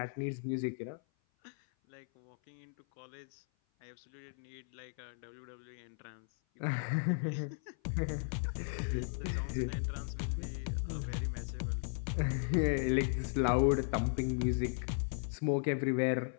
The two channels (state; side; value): silent; right; 53 dB below the other